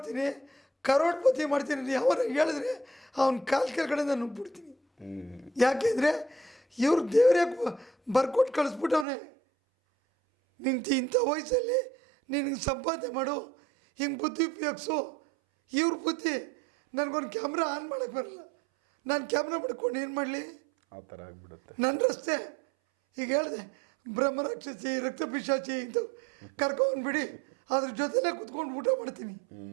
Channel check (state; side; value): drops out; left; at 9.1 s